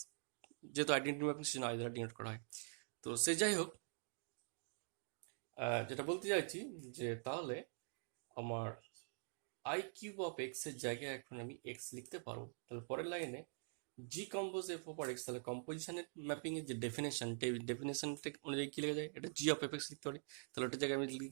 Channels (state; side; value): silent; left; digital silence